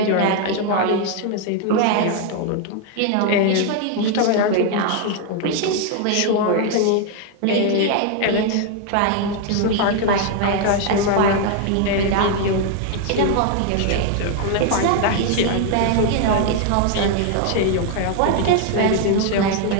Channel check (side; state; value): both; different; correlation 0.00